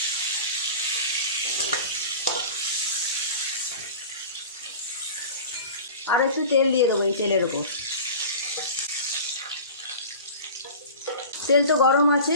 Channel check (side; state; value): both; inverted; correlation -0.37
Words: আর একটু তেল দিয়ে দেবো এই তেলের ওপর। তেল তো গরম আছে,